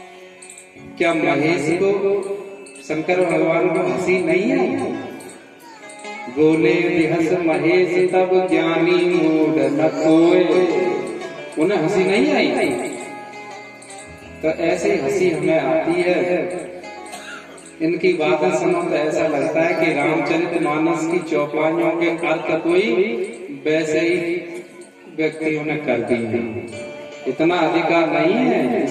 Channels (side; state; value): both; identical; correlation 1.00